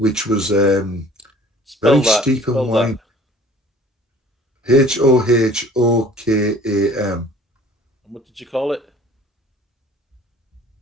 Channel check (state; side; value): normal; both; correlation 0.50